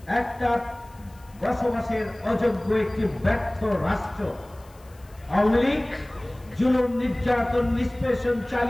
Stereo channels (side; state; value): left; noise; hiss, 28 dB below the sound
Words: একটা বসবাসের অযোগ্য একটি ব্যর্থ রাষ্ট্র। আওয়ামী লীগ জুলুম, নির্যাতন, নিষ্পেষণ